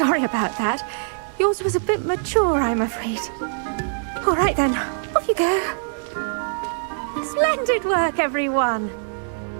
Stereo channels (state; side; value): silent; left; digital silence